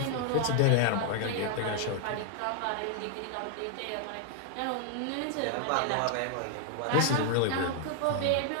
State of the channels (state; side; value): different; both; correlation 0.00